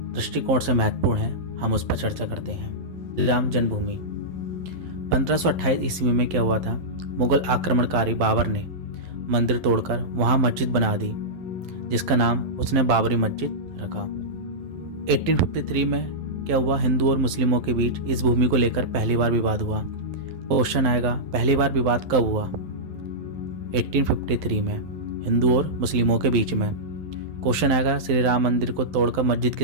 दृष्टिकोण से महत्वपूर्ण है, हम उस पर चर्चा करते हैं। श्री राम जन्मभूमि 1528 ईस्वी में क्या हुआ था? मुगल आक्रमणकारी बाबर ने मंदिर तोड़कर वहां मस्जिद बना दी, जिसका नाम उसने बाबरी मस्जिद रखा। 1853 में क्या हुआ? हिंदू और मुस्लिमों के बीच इस भूमि को लेकर पहली बार विवाद हुआ। क्वेश्चन आएगा, पहली बार विवाद कब हुआ? 1853 में हिंदू और मुस्लिमों के बीच में। क्वेश्चन आएगा, श्री राम मंदिर को तोड़कर मस्जिद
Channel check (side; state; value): left; late; 11 ms